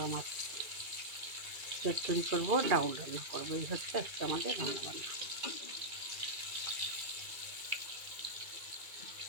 মাছ চচ্চড়ি করবো, ডাউল রান্না করবো। এই হচ্ছে আজকে আমাদের রান্নাবান্না।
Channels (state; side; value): late; left; 2.3 ms